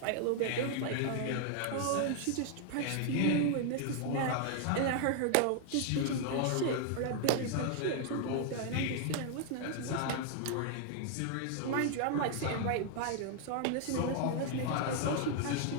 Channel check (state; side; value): different; both; correlation 0.00